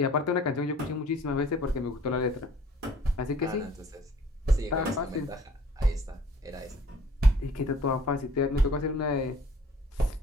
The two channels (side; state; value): both; normal; correlation 0.53